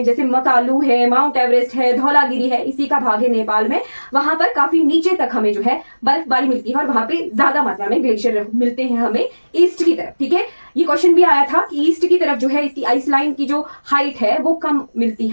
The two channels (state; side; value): inverted; both; correlation -1.00